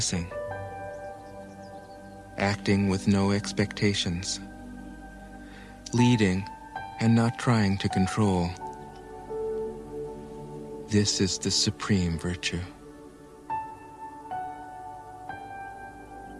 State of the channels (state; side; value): identical; both; correlation 1.00